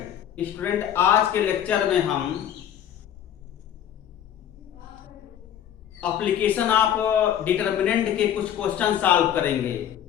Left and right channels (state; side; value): quieter; right; 10.1 dB